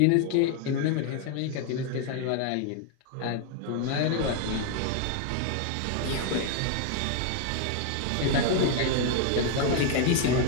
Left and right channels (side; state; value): both; different; correlation 0.00